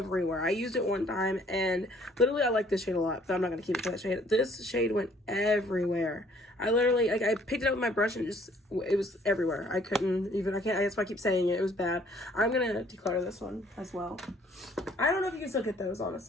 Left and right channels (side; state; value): both; normal; correlation 0.60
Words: I used it one time, and literally I like this shade a lot, but I'm not gonna keep it for that shade. This shade went everywhere. I literally, like, I picked it up with my brush and it was everywhere. I couldn't even, that's why I keep saying it. It was bad. I'm gonna declutter this one as well. I don't know if you can still get those,